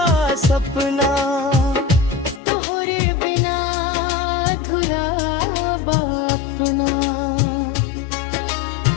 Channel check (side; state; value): right; drops out; at 2.4 s